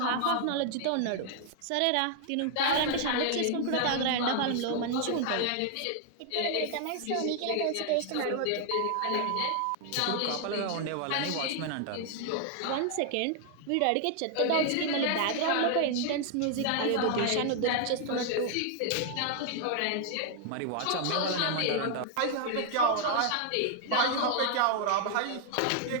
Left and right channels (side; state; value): both; different; correlation 0.00